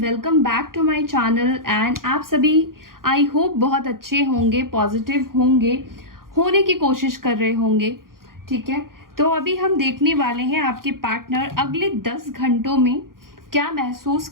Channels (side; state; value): left; late; 0.91 ms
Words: back to my channel. And आप सभी आई होप बहुत अच्छे होंगे, पॉजिटिव होंगे, होने की कोशिश कर रहे होंगे। ठीक है, तो अभी हम देखने वाले हैं आपके पार्टनर अगले 10 घंटों में क्या महसूस